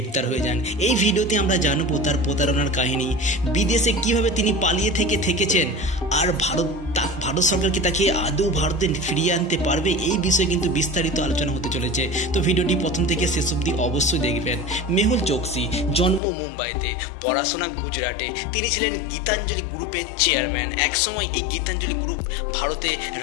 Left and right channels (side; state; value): right; drops out; at 16.2 s